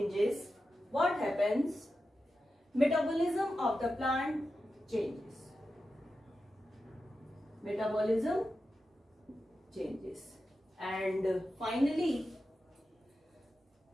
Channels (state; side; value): normal; both; correlation 0.91